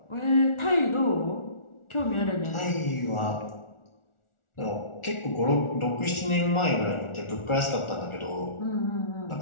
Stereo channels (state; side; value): late; right; 1.4 ms